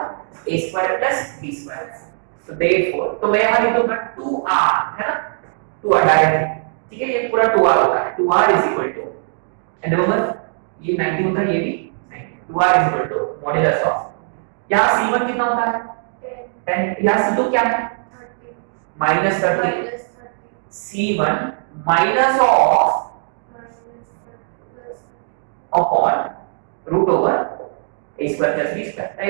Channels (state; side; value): silent; left; digital silence